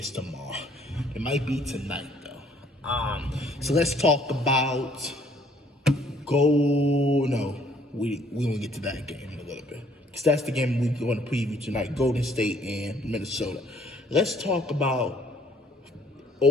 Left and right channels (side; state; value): both; normal; correlation 0.62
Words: tomorrow. It might be tonight, though. So let's talk about we won't get to that game in a little bit, because that's the game we're going to preview tonight, Golden State and Minnesota. Let's talk about